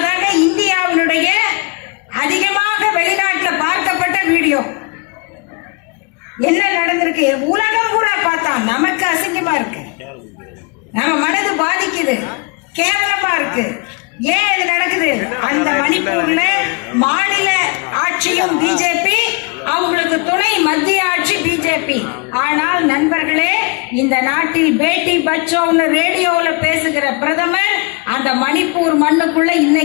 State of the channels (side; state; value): right; quieter; 32.3 dB